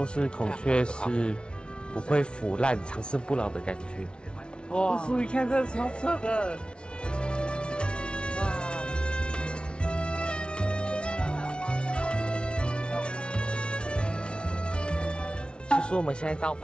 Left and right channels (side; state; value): right; late; 0.057 ms